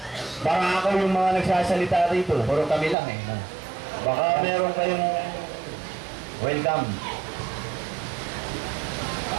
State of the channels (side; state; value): left; drops out; at 3.0 s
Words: baka ako yung mga nagsasalita rito. Puro kami lang eh. Baka meron kayong welcome.